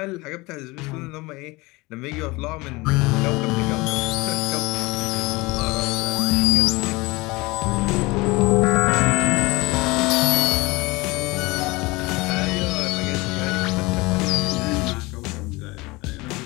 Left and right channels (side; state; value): right; quieter; 23.2 dB